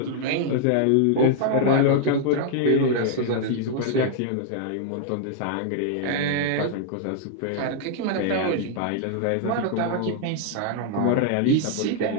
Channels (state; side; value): different; both; correlation -0.01